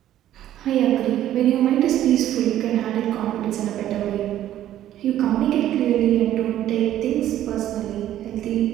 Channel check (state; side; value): quieter; left; 12.3 dB